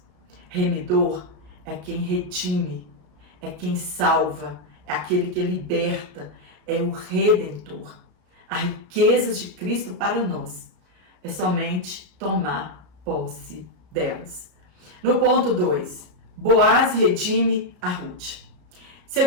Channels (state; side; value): late; left; 33 ms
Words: Remidor é quem redime, é quem salva, é aquele que liberta, é o Redentor. As riquezas de Cristo para nós é somente tomar posse delas. No ponto 2, Boaz redime a Ruth.